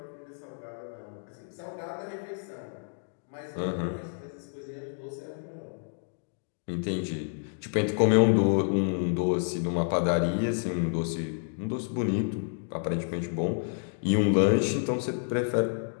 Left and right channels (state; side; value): silent; right; digital silence